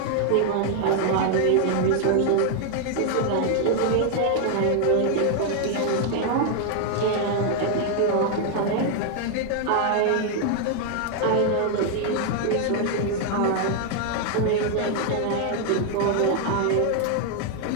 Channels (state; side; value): different; both; correlation 0.00